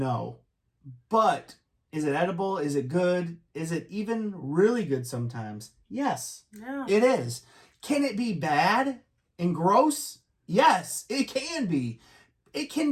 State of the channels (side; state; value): both; identical; correlation 1.00